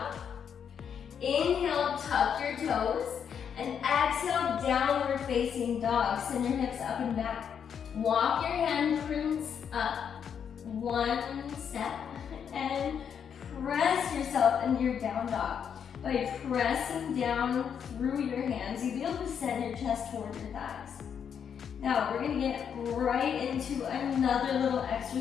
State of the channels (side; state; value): right; quieter; 7.7 dB